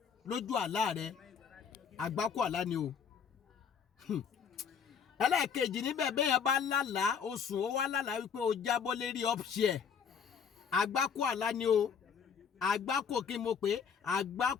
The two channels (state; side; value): quieter; right; 6.8 dB